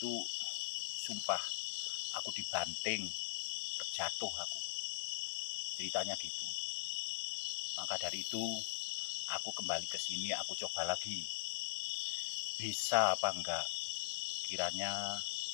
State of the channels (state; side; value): silent; right; digital silence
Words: sumpah aku dibanting, terjatuh aku. Ceritanya gitu. Maka dari itu aku kembali ke sini, aku coba lagi. Bisa apa enggak? Kiranya